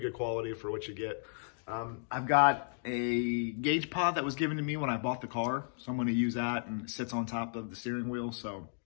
quality for what you get. I've got a gauge pod that was given to me when I bought the car, so I'm going to use that, and it sits on top of the steering wheel. So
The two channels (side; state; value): right; silent; digital silence